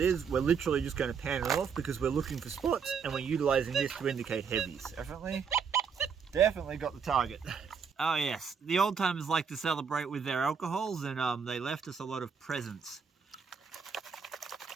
is. We're literally just going to pan it off because we're looking for spots and we're utilizing this to indicate heavies. Definitely got the target. Oh yes, the old timers like to celebrate with their alcohols, and they left us a lot of presents.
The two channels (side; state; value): left; quieter; 6.3 dB